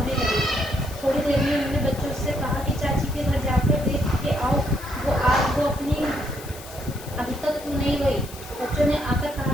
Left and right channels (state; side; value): noise; left; hiss, 16 dB below the sound